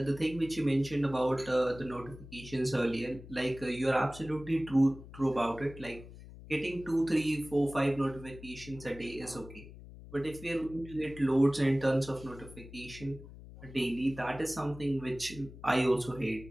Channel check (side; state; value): left; noise; hum, 16 dB below the sound